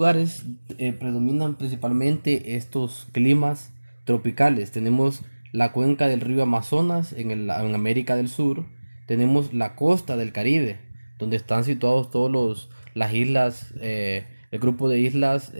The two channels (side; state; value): both; inverted; correlation -1.00